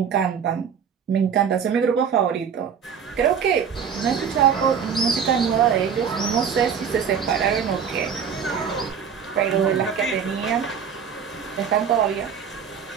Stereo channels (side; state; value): left; quieter; 7.2 dB